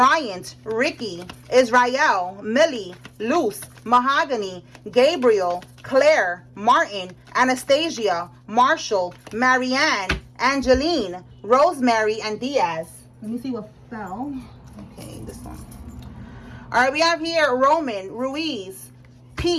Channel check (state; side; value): identical; both; correlation 1.00